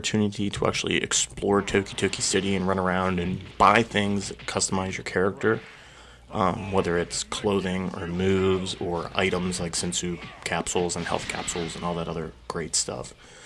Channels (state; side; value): identical; both; correlation 1.00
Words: to actually explore Toki City and run around and buy things that customize your character, whether it's clothing or moves or items like Sensu capsules and health capsules and all that other great stuff.